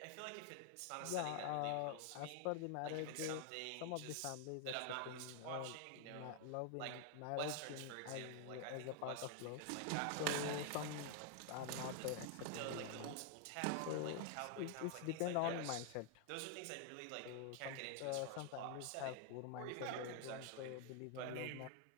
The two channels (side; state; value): both; different; correlation 0.00